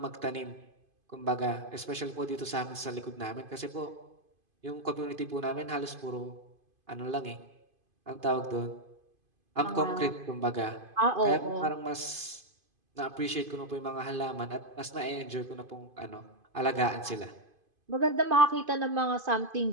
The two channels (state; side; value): late; left; 2.5 ms